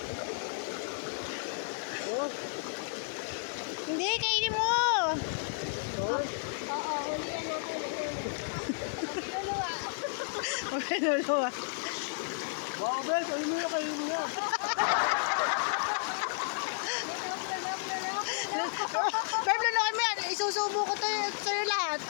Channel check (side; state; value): right; silent; digital silence